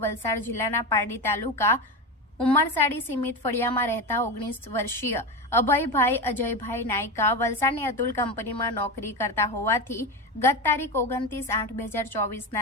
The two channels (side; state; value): both; normal; correlation 0.19